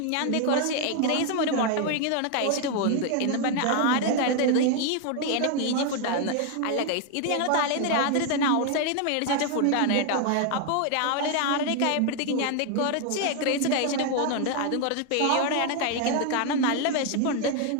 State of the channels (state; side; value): different; both; correlation 0.00